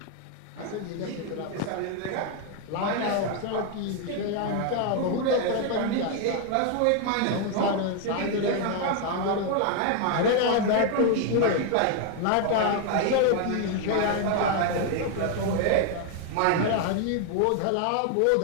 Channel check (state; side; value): different; both; correlation 0.01